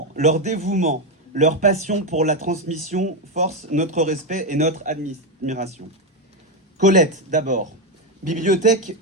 leur dévouement, leur passion pour la transmission forcent notre respect et notre admiration. Colette, d'abord.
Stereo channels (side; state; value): both; normal; correlation 0.07